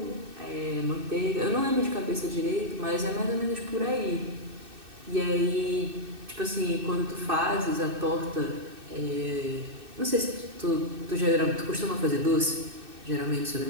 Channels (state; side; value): late; left; 2.6 ms